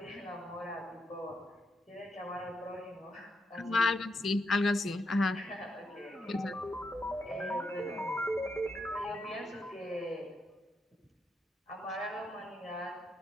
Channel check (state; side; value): normal; both; correlation 0.81